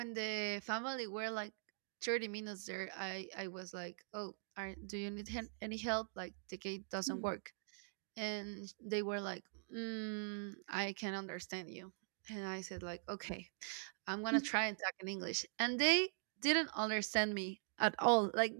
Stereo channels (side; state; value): left; silent; digital silence